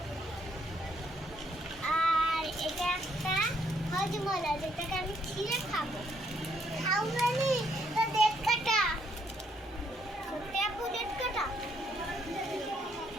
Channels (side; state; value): both; normal; correlation 0.71